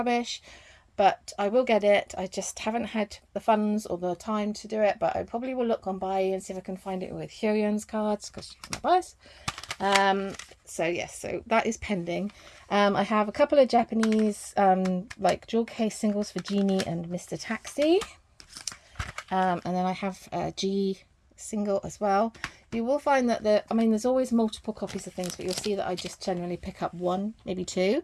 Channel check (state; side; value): identical; both; correlation 1.00